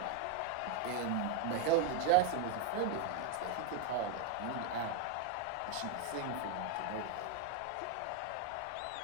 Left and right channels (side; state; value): both; different; correlation 0.01